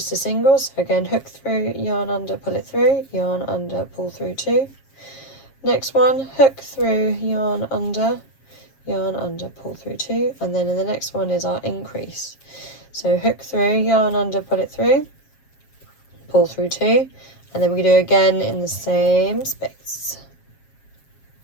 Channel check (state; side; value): late; right; 7.4 ms